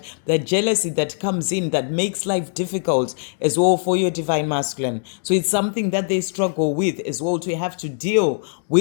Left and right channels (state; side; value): silent; right; digital silence